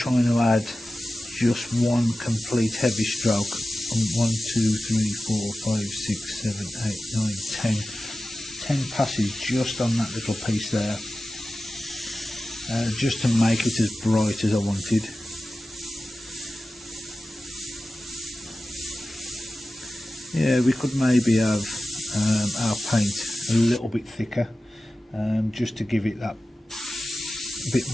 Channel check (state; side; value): normal; both; correlation 0.95